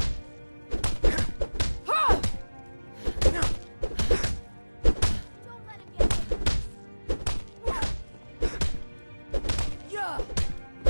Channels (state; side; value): inverted; both; correlation -1.00